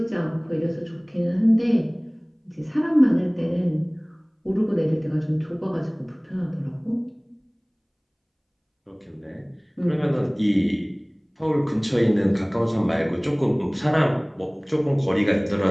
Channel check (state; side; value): identical; both; correlation 1.00